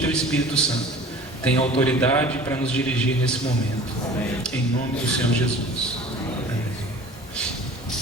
Teu Espírito Santo, tenha autoridade para nos dirigir nesse momento. Amém. Em nome do Senhor Jesus. Amém.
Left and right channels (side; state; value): both; normal; correlation 0.43